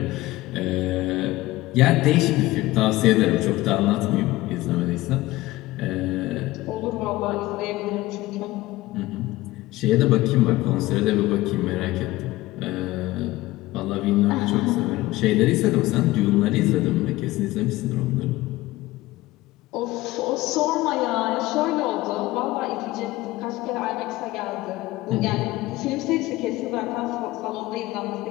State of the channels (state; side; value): quieter; right; 18.2 dB